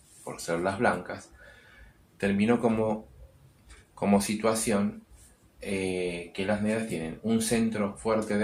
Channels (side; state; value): both; identical; correlation 1.00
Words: por ser las blancas, terminó como situación que las negras tienen un centro fuerte